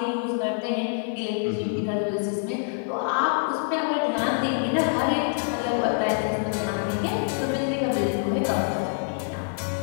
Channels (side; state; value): right; silent; digital silence